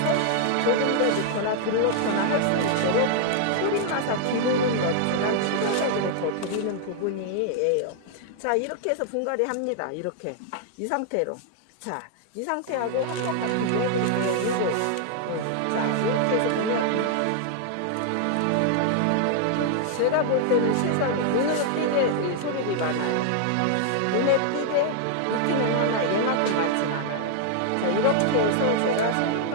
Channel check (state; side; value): different; both; correlation 0.00